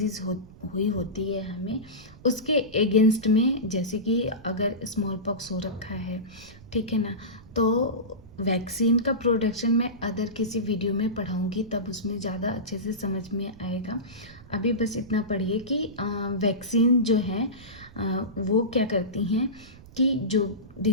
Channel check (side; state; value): right; noise; rumble, 20 dB below the sound